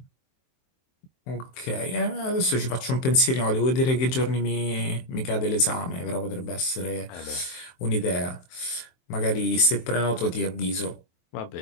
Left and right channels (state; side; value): late; right; 23 ms